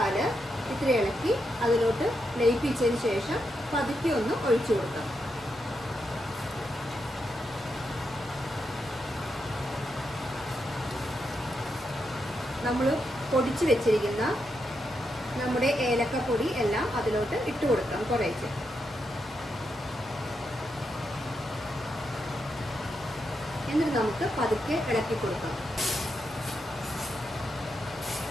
ഇത്തിരി ഇളക്കി അതിലോട്ട് ലയിപ്പിച്ചതിന് ശേഷം പതുക്കെ ഒന്ന് ഒഴിച്ചു കൊടുക്കാം. നമ്മൾ പൊടിച്ച് വെച്ചിരിക്കുന്ന നമ്മുടെ ഏലക്കപ്പൊടി എല്ലാം അതിലോട്ട് ഇട്ട് കൊടുക്കാം. കുറേശ്ശെ എന്നിട്ട് നമുക്ക് പതുക്കെ ഇളക്കി കൊടുക്കാം.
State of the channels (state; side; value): normal; both; correlation 0.84